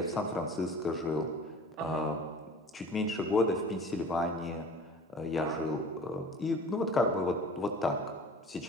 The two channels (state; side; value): normal; both; correlation 0.43